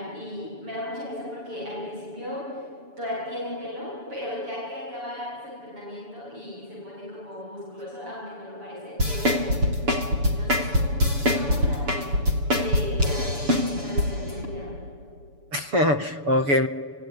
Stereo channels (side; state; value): left; late; 7.0 ms